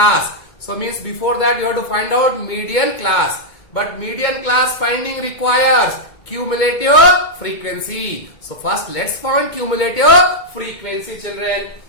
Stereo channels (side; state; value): right; late; 2.2 ms